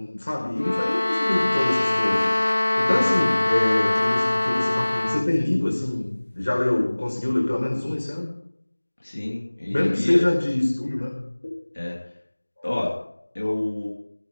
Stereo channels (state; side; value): inverted; both; correlation -1.00